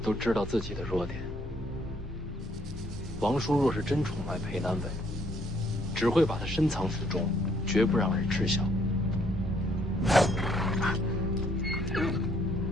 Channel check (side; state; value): both; normal; correlation 0.67